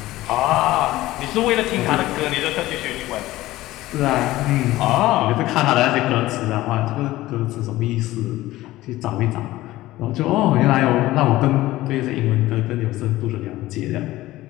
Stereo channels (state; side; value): quieter; right; 16.8 dB